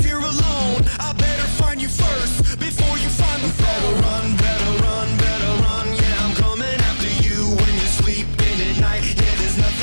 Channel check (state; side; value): inverted; both; correlation -1.00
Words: here alone. I better find you first before you find the phone. Better run. Yeah, I'm coming after you when you're sleeping at night. Yeah, there's